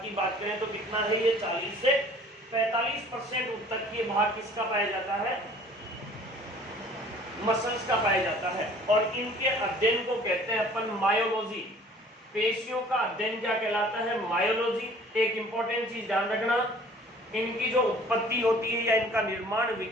की बात करें तो कितना है ये? 40 से 45% उत्तकीय भाग किसका पाया जाता है? मसल्स का पाया जाता है। और इनके अध्ययन को कहते हैं अपन मायोलॉजी। पेशियों का अध्ययन क्या कहलाता है? मायोलॉजी। एक इंपॉर्टेंट चीज ध्यान रखना, इनकी जो उत्पत्ति होती है या इनका निर्माण,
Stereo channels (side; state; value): both; normal; correlation 0.51